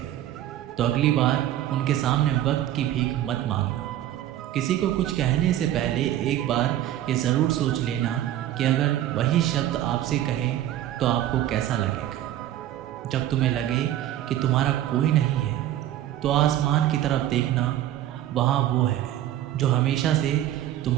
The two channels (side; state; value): left; quieter; 12.7 dB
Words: तो अगली बार उनके सामने वक्त की भीख मत मांगना। किसी को कुछ कहने से पहले एक बार ये ज़रूर सोच लेना कि अगर वही शब्द आपसे कहें तो आपको कैसा लगेगा। जब तुम्हें लगे कि तुम्हारा कोई नहीं है तो आसमान की तरफ देखना, वहाँ वो है जो हमेशा से